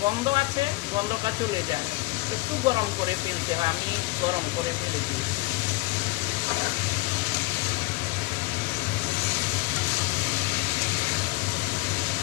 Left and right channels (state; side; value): quieter; right; 21.9 dB